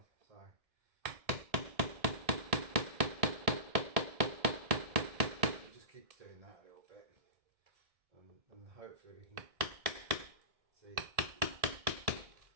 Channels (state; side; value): late; left; 1.7 ms